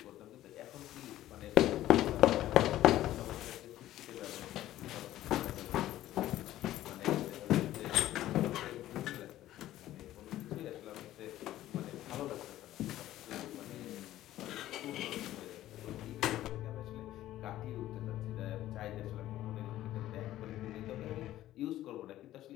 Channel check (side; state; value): right; quieter; 14.0 dB